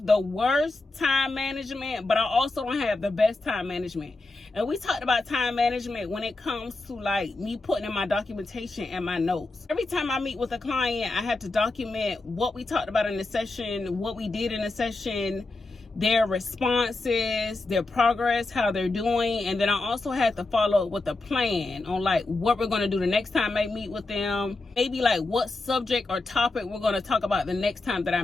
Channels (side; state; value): right; quieter; 3.2 dB